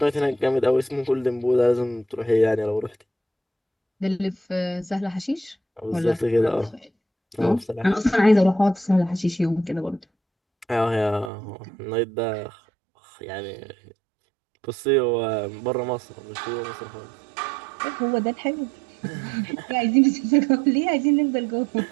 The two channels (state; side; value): drops out; left; at 11.3 s